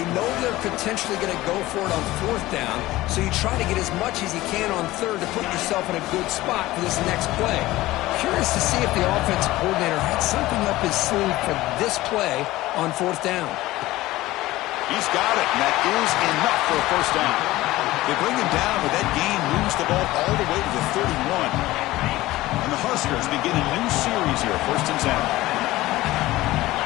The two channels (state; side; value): quieter; right; 17.5 dB